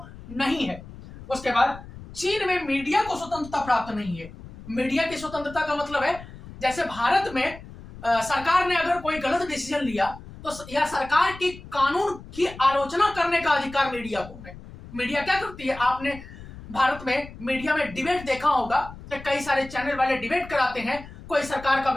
नहीं है। उसके बाद चीन में मीडिया को स्वतंत्रता प्राप्त नहीं है। मीडिया की स्वतंत्रता का मतलब है जैसे भारत में सरकार ने अगर कोई गलत डिसीजन लिया तो यह सरकार की कानून की आलोचना करने का अधिकार मीडिया को है। मीडिया क्या करती है, आपने भारत में मीडिया में डिबेट देखा होगा तो कई सारे चैनल वाले डिबेट कराते हैं, कोई सरकार का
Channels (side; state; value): left; noise; rumble, 16 dB below the sound